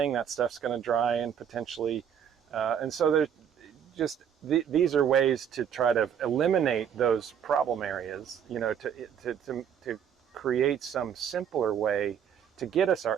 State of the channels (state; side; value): quieter; left; 8.4 dB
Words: That stuff's going to dry and potentially, and so there's just these are ways to try to eliminate those problem areas. You know, to create some simpler way to get us